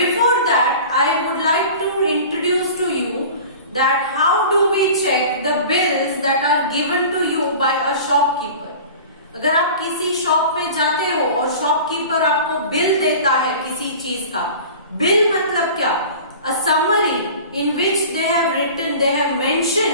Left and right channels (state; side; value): inverted; both; correlation -0.39